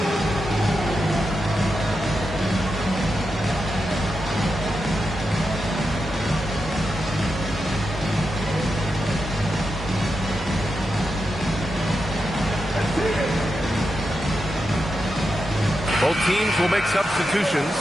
Both teams will make substitutions.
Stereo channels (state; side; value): normal; both; correlation 0.87